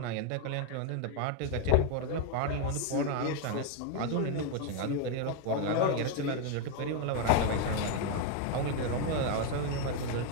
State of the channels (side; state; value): both; different; correlation 0.01